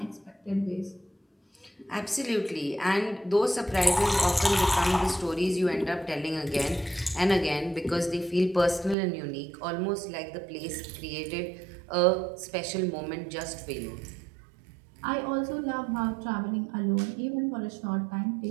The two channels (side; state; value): left; drops out; at 9.0 s